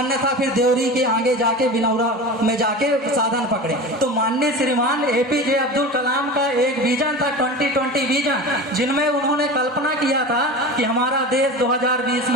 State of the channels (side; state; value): both; normal; correlation 0.31